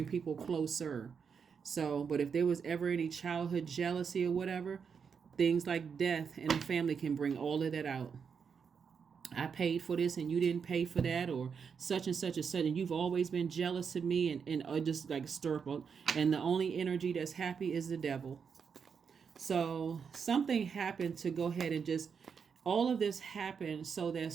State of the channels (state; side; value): quieter; left; 6.4 dB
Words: people closer. So, but if there was ever any childhood jealousy or whatever, things like death in the family can bring all of that out. I paid for this and you didn't pay for that, or such and such and such, and you've always been jealous of me, and just like stir up. And the only energy that's happy is the devil. So something happened to go ahead and just, all of this happened so that